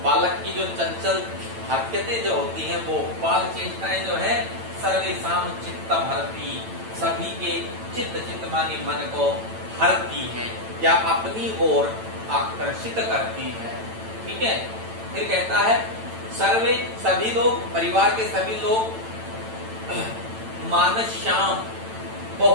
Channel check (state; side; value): late; left; 9.0 ms